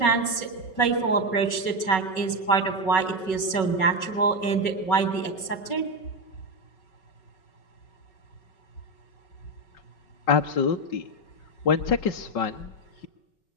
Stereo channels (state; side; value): late; right; 5.4 ms